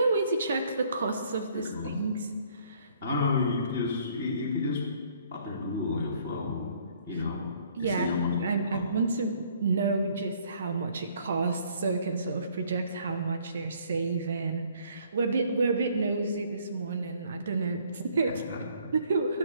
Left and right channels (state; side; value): inverted; both; correlation -0.62